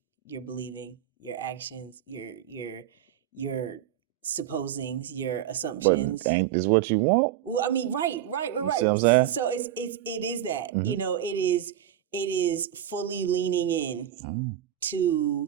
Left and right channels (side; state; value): left; quieter; 11.2 dB